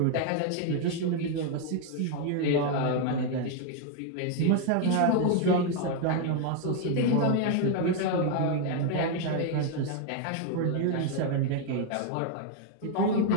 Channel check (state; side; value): different; both; correlation 0.00